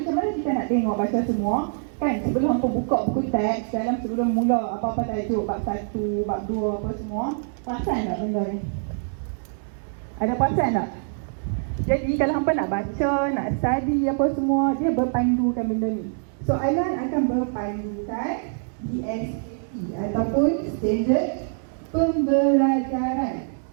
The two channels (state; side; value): silent; left; digital silence